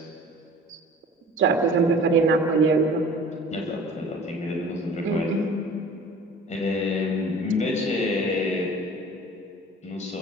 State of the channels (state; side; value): normal; both; correlation 0.45